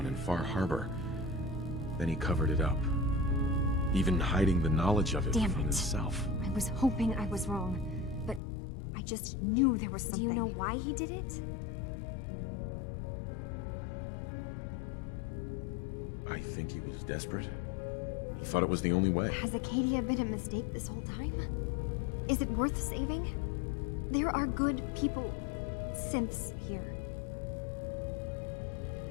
in Far Harbor. Then he covered it up. Even hiding the knowledge of it Damn from it. himself. I was hoping I was wrong, but I just knew there was something. Do you know why he did it? I think he was desperate. He thought it was the only way. Has Acadia been a mistake this whole time? Is it worth saving? There are good people, synths here.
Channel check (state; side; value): drops out; right; at 8.4 s